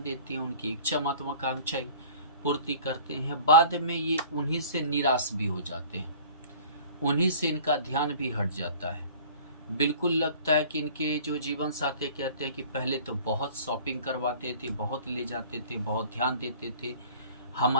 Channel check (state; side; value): inverted; both; correlation -0.46